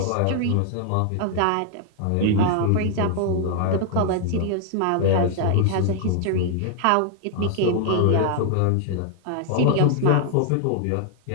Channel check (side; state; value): both; different; correlation 0.00